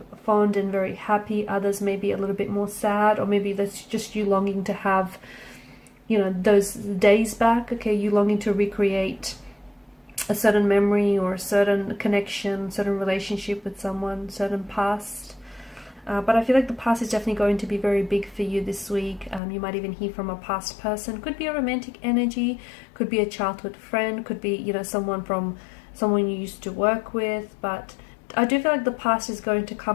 fond and very happy, others maybe a little bit more sad, or maybe that's just you longing to have, you know, those days back, okay? You longing to recreate a certain memory or a certain connection, certain relationship with someone, certain past. But I feel like the past is definitely going to be very big for you this week. You might even hear from a past person. Could be a romantic energy, could be a childhood friend, could be, you know, someone you used to work with. But I do feel like the past is going to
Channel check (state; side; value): drops out; right; at 19.4 s